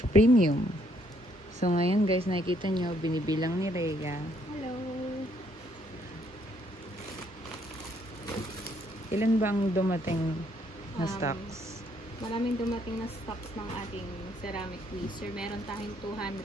So ngayon guys, nakikita nyo, binibilang ni Rhea. Hello! Ilan ba ang dumating na stocks? Maraming dumating na stocks ng ating ceramic tweezer. Meron tayong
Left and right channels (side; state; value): both; normal; correlation 0.70